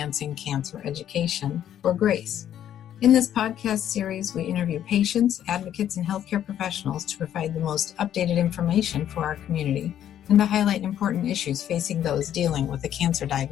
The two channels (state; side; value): quieter; right; 10.7 dB